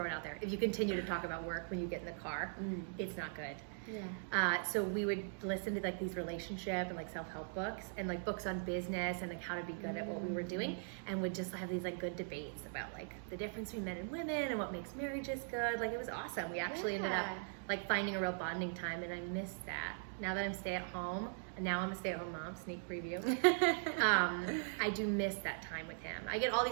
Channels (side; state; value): left; silent; digital silence